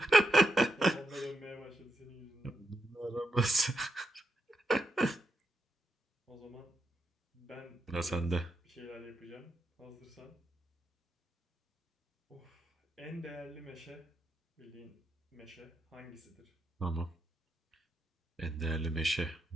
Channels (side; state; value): both; normal; correlation 0.84